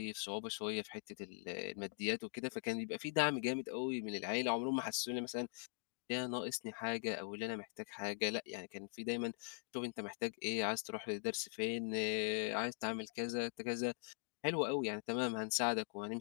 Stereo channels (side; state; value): right; silent; digital silence